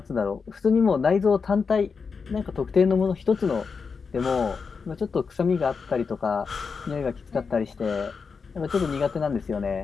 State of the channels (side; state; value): right; quieter; 5.3 dB